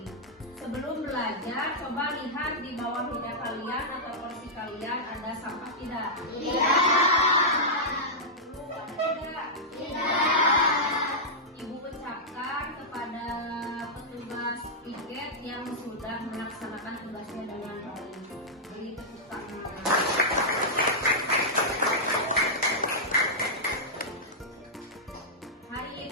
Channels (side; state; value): both; normal; correlation -0.09